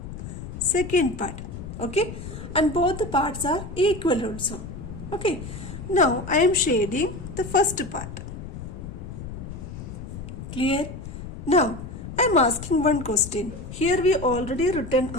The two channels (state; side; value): noise; left; rumble, 10 dB below the sound